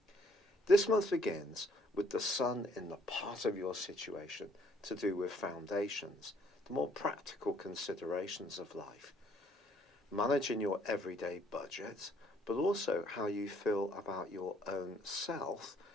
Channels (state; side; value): normal; both; correlation 0.64